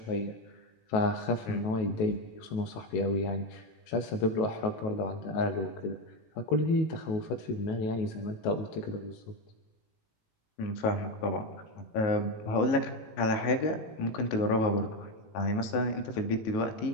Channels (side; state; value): right; late; 19 ms